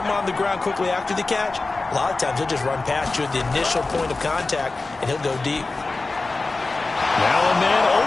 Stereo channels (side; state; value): right; quieter; 3.5 dB